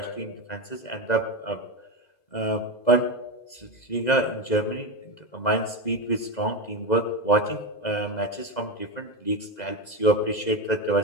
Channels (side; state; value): right; late; 2.0 ms